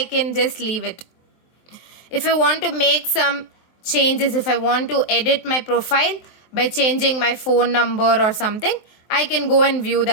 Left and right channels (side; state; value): right; late; 23 ms